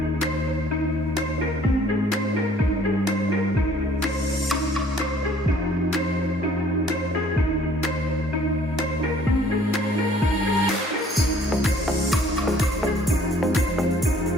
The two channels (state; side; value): normal; both; correlation 0.57